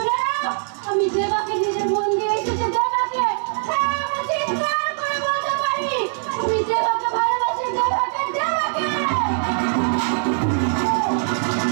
নাও, আমি দেবাকে নিজের মন দিয়ে এসেছি। দেবাকে, হ্যাঁ আমি চিৎকার করে বলতে পারি, আমি দেবাকে ভালোবাসি। দেবাকে, দেবাকে।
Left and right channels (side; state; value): left; silent; 64 dB below the other